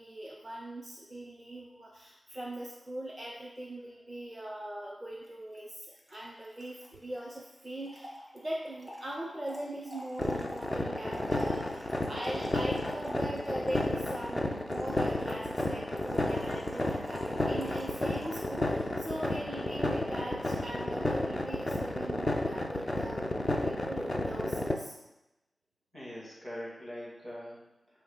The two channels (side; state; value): both; normal; correlation 0.91